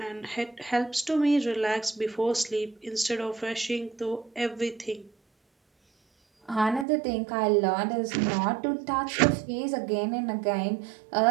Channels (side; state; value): left; drops out; at 6.9 s